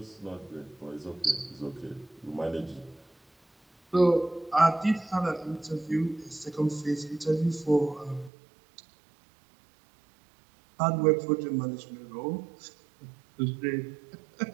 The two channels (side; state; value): left; drops out; at 8.3 s